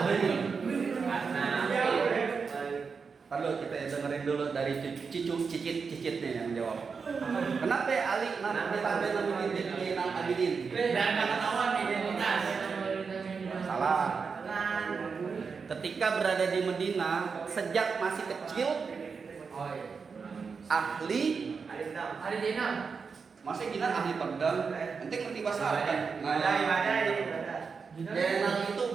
Perlu kita dengerin dulu dari cicitnya yang jawab. Kenapa Ali ditambahin namanya Zainal Abidin? Dan ketahuan identitas. Salah. Ketika berada di Madinah, sejak masih kecil, ahli Zainab. masa gina ahli pedang, nanti ngerti bahasa Arab kan? Zainal itu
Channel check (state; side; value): quieter; left; 5.4 dB